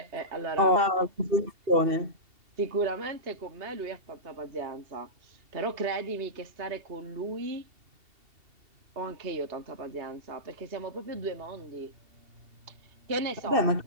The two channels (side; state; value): left; late; 2.7 ms